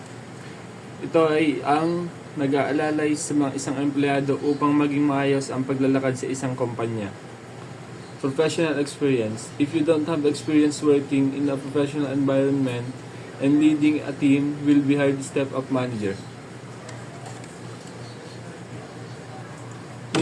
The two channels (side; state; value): both; identical; correlation 1.00